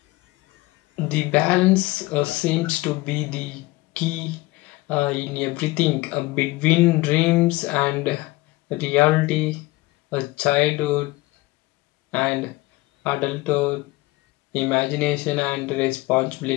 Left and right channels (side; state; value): right; quieter; 20.3 dB